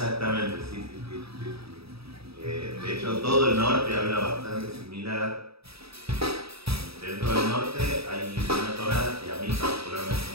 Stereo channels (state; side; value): late; left; 0.77 ms